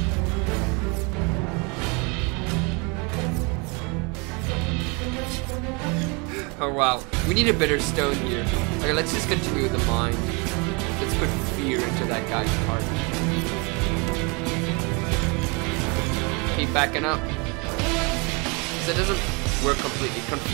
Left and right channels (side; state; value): left; quieter; 30.7 dB